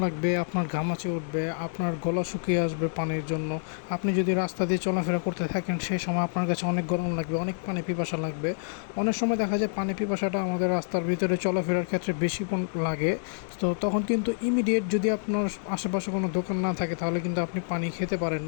লাগবে, আপনার ঘামাচি উঠবে, আপনার গলা শুকিয়ে আসবে পানির জন্য। আপনি যদি রাস্তা দিয়ে চলাফেরা করতে থাকেন সেই সময় আপনার কাছে অনেক গরম লাগবে, অনেক পানি পিপাসা লাগবে। অনেক সময় দেখা যায় পানি পিপাসাটা আমাদের রাস্তার ভিতরে চলাফেরার ক্ষেত্রে বেশি লাগে। তো তখন কিন্তু ইমিডিয়েট যদি আপনার আশেপাশে কোনো দোকান না থাকে তাহলে কিন্তু আপনি পানি খেতে পারেন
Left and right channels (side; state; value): right; silent; 60 dB below the other